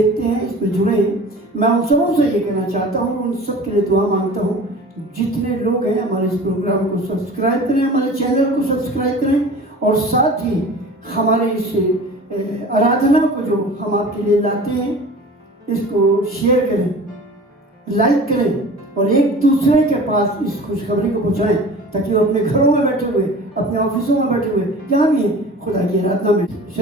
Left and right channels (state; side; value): normal; both; correlation 0.40